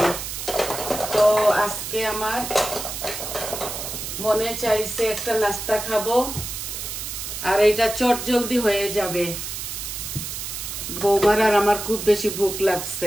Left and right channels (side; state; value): right; noise; hiss, 6 dB below the sound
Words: তো আজকে আমার মনে চাইছে একটা নাস্তা খাবো, আর এটা চট জলদি হয়ে যাবে। বৌমার আর আমার খুব বেশি ভুক